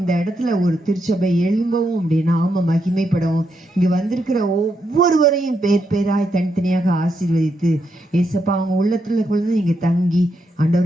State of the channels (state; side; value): normal; both; correlation 0.81